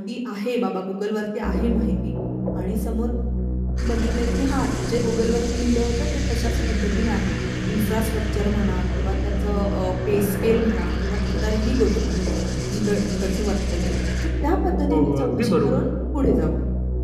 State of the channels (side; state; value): both; identical; correlation 1.00